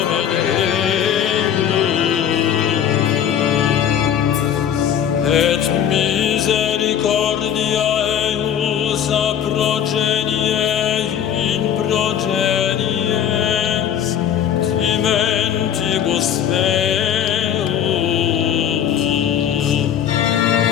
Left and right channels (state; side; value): quieter; right; 9.3 dB